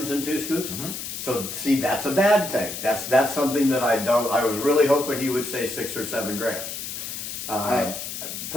and 2 scoops? Mm-hmm. So see, that's a bad thing. That's something that I was really hoping he would say 6 or 7 grams. I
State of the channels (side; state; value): left; noise; hiss, 7 dB below the sound